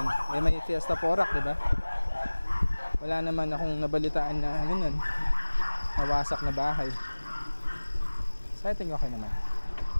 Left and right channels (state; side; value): inverted; both; correlation -1.00